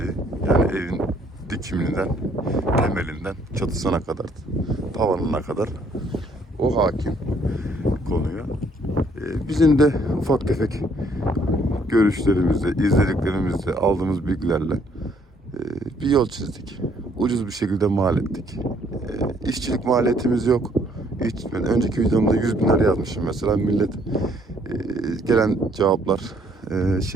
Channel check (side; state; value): both; normal; correlation 0.65